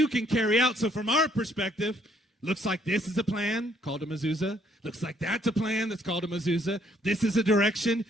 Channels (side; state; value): both; normal; correlation 0.67